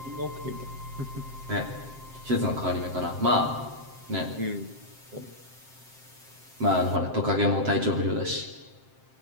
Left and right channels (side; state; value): left; late; 7.6 ms